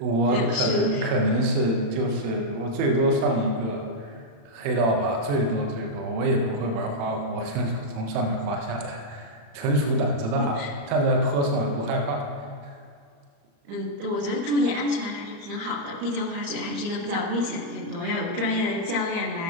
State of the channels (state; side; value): late; left; 35 ms